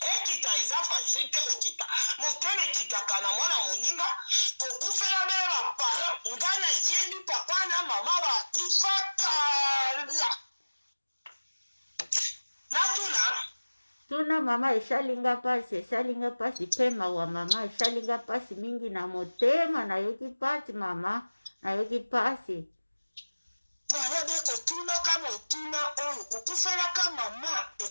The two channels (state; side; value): inverted; both; correlation -1.00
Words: eza facilite kokita motema ekitaka na mwana moninga kokufela be bapara ngana yebi papa na mama bakufakala natuna Tuna mama eshalinga pasi pema wa mama eshalinga pasi mingi na motema na yoki pasi mama na yoki pasi. Mwana beko tuna kama otuna oyo kukufela kama mama